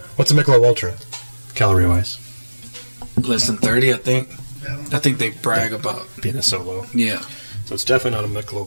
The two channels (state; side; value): inverted; both; correlation -1.00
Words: Michelob Ultra, calorie wise? Less than 30, I think. I think they brag about. Being a solo, Yeah. so it's definitely not a Michelob